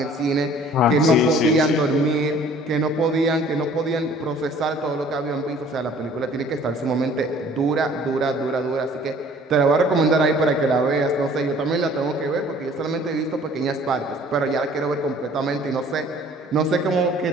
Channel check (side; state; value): both; normal; correlation 0.53